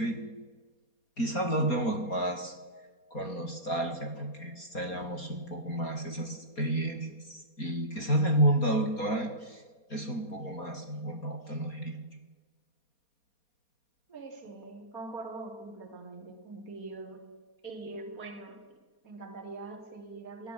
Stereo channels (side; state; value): right; late; 4.2 ms